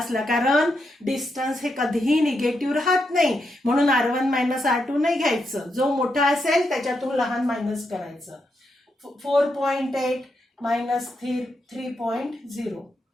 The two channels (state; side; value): normal; both; correlation 0.83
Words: कारण डिस्टन्स हे कधीही निगेटिव्ह राहत नाही म्हणून R1 मायनस R2 नाही घ्यायचं. जो मोठा असेल त्याच्यातून लहान मायनस करायचं. 4.8 मायनस 3.0